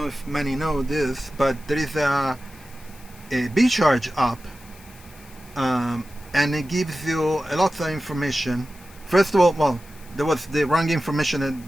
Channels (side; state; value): left; noise; hiss, 23 dB below the sound